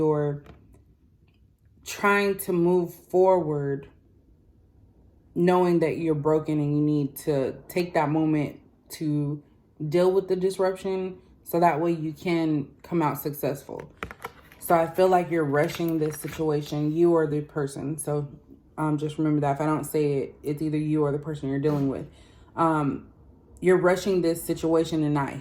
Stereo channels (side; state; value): both; identical; correlation 1.00